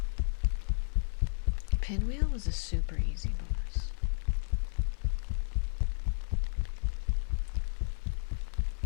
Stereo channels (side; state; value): right; silent; 56 dB below the other